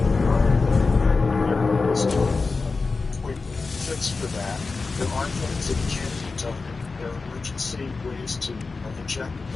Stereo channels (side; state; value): right; quieter; 4.1 dB